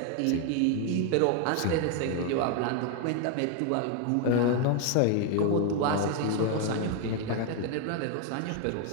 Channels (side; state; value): both; different; correlation 0.01